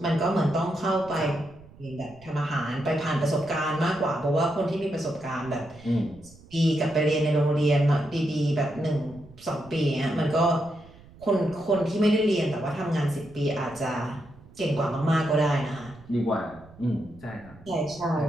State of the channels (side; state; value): right; noise; rumble, 22 dB below the sound